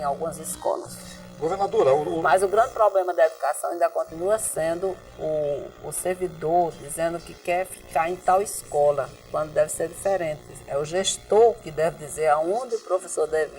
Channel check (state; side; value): identical; both; correlation 1.00